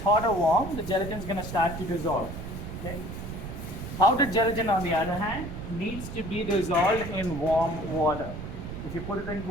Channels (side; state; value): right; noise; rumble, 8 dB below the sound